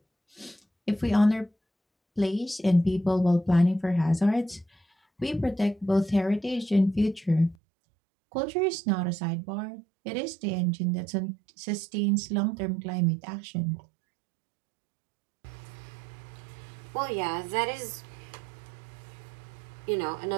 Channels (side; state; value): left; drops out; at 7.6 s